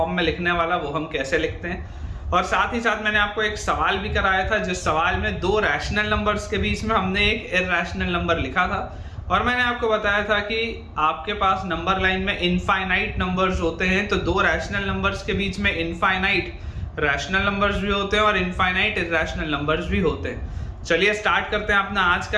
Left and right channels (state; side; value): identical; both; correlation 1.00